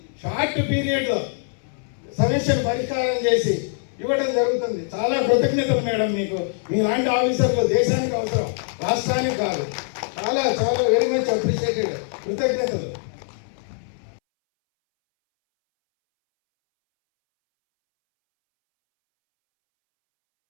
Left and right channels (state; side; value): silent; right; 62 dB below the other